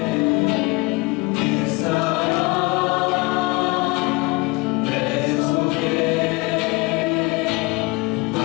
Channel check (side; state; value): right; quieter; 25.7 dB